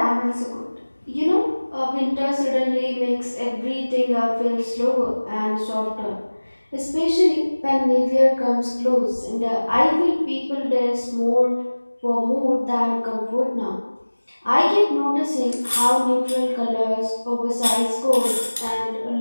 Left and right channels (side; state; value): both; inverted; correlation -1.00